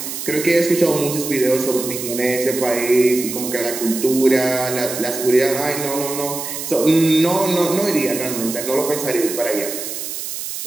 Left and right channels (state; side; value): noise; right; hiss, 7 dB below the sound